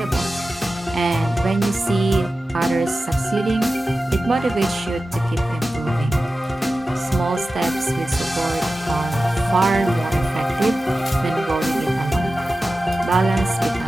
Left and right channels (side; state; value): both; normal; correlation 0.94